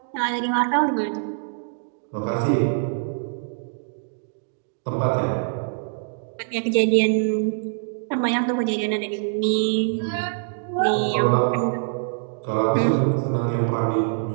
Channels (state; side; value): silent; left; digital silence